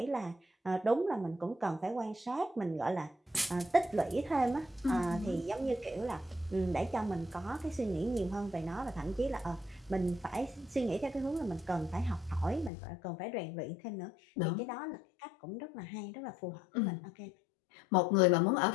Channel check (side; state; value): right; drops out; at 12.7 s